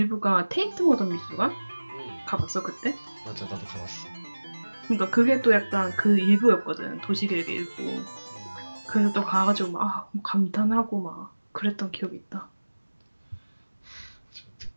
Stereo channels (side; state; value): both; inverted; correlation -1.00